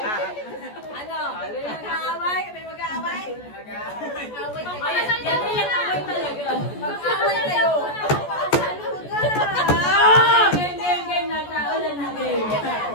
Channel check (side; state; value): right; late; 14 ms